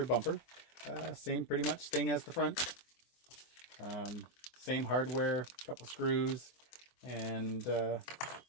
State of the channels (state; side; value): late; right; 24 ms